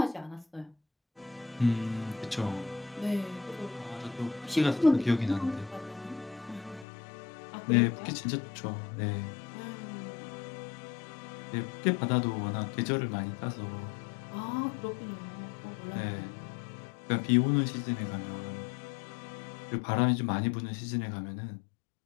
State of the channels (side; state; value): right; drops out; at 6.9 s